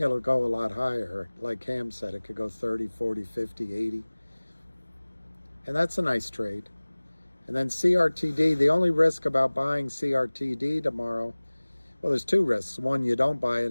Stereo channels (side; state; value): both; inverted; correlation -1.00